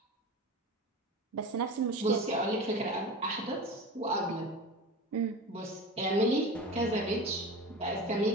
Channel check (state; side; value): normal; both; correlation 0.30